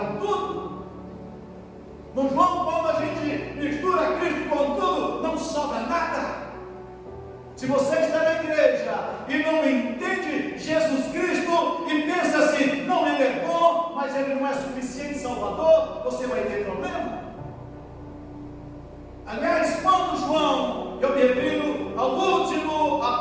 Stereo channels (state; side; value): identical; both; correlation 1.00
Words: tudo. No João, quando a gente mistura Cristo com tudo, não sobra nada. Se você está na igreja e não entende Jesus Cristo e pensa assim: não, ele é bom, mas ele não é suficiente Salvador, você vai ter problema. Aliás, quando João, eu me refiro ao último